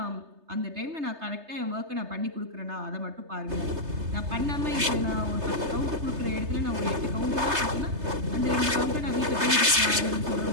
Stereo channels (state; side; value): late; left; 3.3 ms